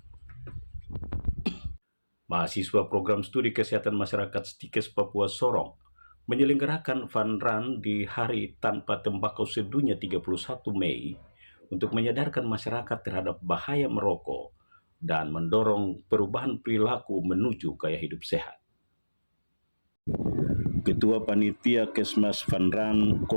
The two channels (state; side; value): inverted; both; correlation -1.00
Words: Mahasiswa program studi kesehatan masyarakat Stikes Papua Sorong menyelenggarakan fun run di Hari Tanpa Tembakau Sedunia 31 Mei untuk menyadarkan masyarakat terhadap bahaya merokok dan mendorong perubahan perilaku menuju gaya hidup sehat. Ketua Panitia Kesmas Fun Run,